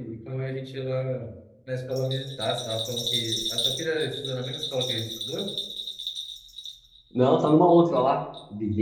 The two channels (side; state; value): both; identical; correlation 1.00